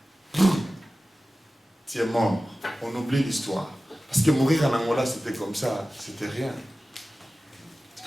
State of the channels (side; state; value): both; normal; correlation 0.96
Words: tu es mort. On oublie l'histoire. Parce que mourir en Angola, c'était comme ça, c'était rien. C'est